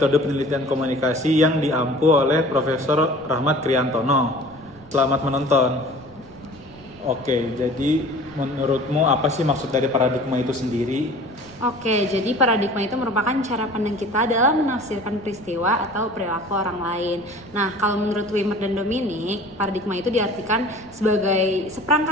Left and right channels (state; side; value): noise; right; rumble, 24 dB below the sound